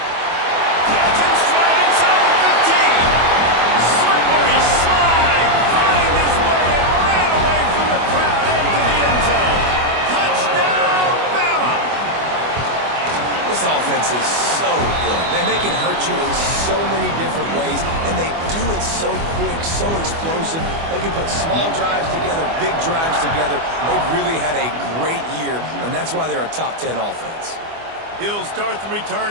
Catch and stride inside the 15. Slippery slide. Find his way and ran away from the crowd into the end zone. Touchdown, Bama! This offense is so good. Man, they can hurt you in so many different ways, and they do it so quick, so explosive. They can put small drives together, big drives together. They've really had a great year, and that's why they're a top 10 offense. He'll start the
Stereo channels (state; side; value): late; left; 24 ms